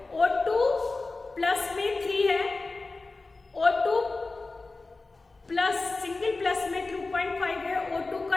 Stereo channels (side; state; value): right; quieter; 3.5 dB